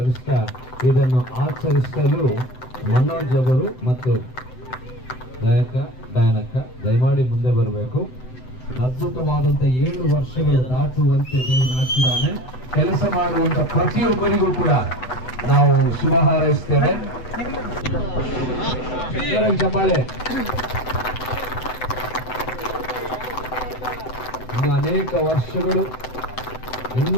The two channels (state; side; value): late; right; 7.9 ms